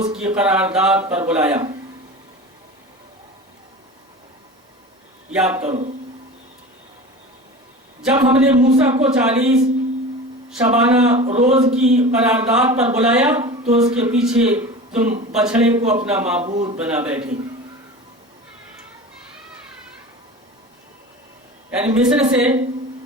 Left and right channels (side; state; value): both; normal; correlation 0.34